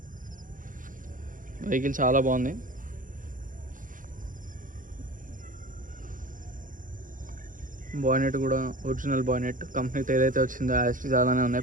వెహికల్ చాలా బాగుంది. బానెట్ కూడా ఒరిజినల్ బానెట్, కంపెనీతో ఏదైతే వచ్చిందో యాస్టీస్ అలానే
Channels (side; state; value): left; late; 0.39 ms